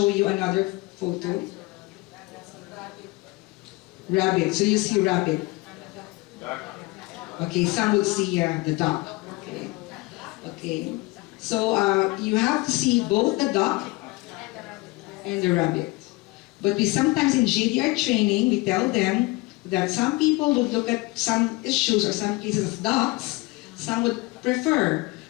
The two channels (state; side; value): quieter; right; 23.2 dB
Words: you another photo. Rabbit. So you see rabbit. Okay, some will see the duck. Okay. Okay. So you have to see both the duck and the rabbit. But we sometimes in JDR training, we tell them that some people would look at some issues or some cases as ducks, some would prefer